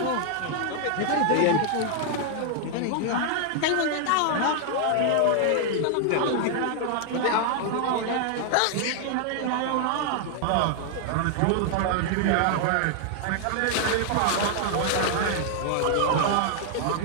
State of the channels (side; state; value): both; different; correlation 0.00